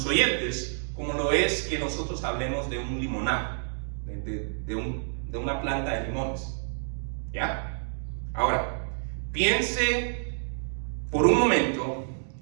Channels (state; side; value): silent; left; digital silence